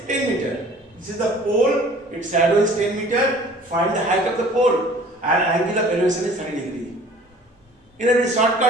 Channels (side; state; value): both; normal; correlation 0.49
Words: 10 meter. This is the pole, its shadow is 10 meter, find the height of the pole and angle of elevation is 30 degree. In a very